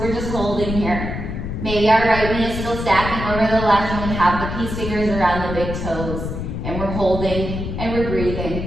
just holding here. Maybe our right knee is still stacking over the left, and we have the peace fingers around the big toes, and we're holding and we're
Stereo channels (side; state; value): left; noise; rumble, 5 dB below the sound